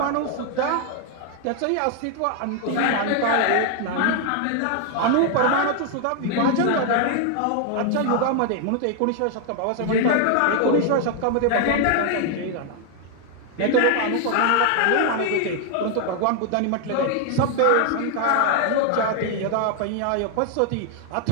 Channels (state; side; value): different; both; correlation 0.00